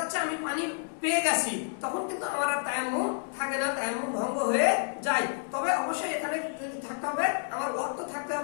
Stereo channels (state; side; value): silent; right; digital silence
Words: আমি পানি পেয়ে গেছি, তখন কিন্তু আমার আর তায়াম্মুম থাকে না, তায়াম্মুম ভঙ্গ হয়ে যায়। তবে অবশ্যই এখানে থাকতে হবে, আমার ওয়াক্ত থাকতে